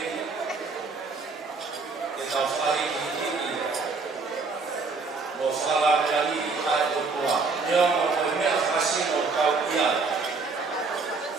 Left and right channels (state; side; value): quieter; left; 4.2 dB